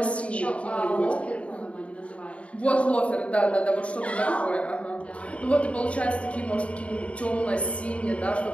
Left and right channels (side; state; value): right; late; 0.063 ms